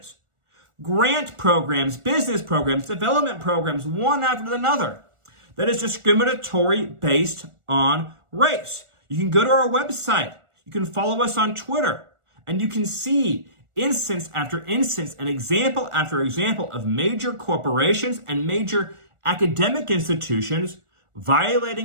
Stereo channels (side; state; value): left; late; 1.4 ms